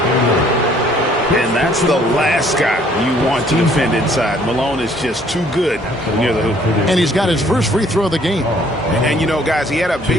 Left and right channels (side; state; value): both; normal; correlation 0.61